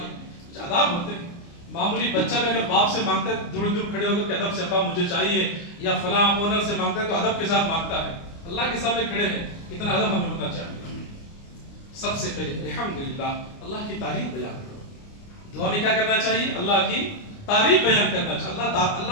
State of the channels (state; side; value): late; right; 29 ms